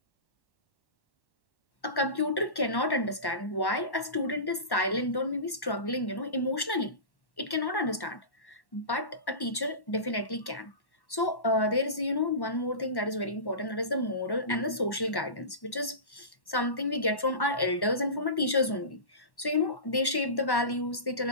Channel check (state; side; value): late; right; 1.1 ms